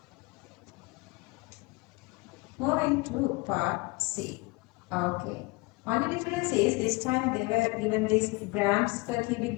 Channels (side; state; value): right; quieter; 25.8 dB